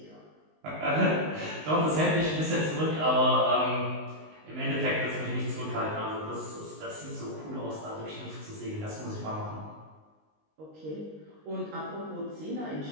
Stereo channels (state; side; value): late; left; 19 ms